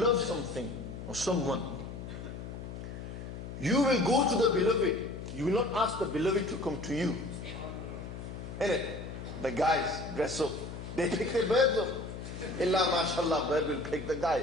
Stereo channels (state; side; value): noise; left; hum, 9 dB below the sound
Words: something or someone, you will go to the beloved. You will not ask the beloved to come to you. Innit? The guys dress up. They pick their birds up. Illa mashallah, bird will pick the guy.